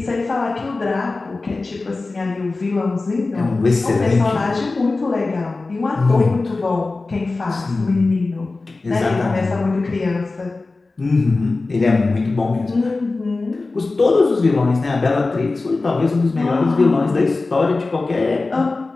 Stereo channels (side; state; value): right; quieter; 3.5 dB